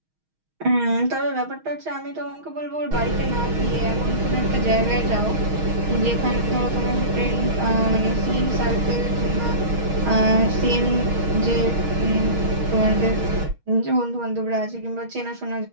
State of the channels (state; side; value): late; left; 6.3 ms